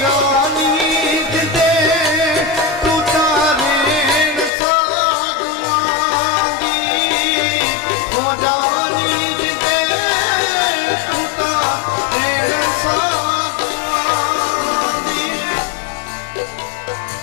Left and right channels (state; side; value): drops out; right; at 4.5 s